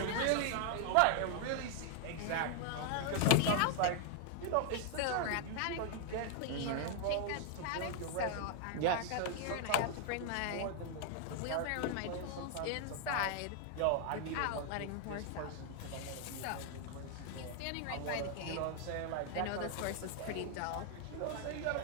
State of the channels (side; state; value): both; different; correlation 0.00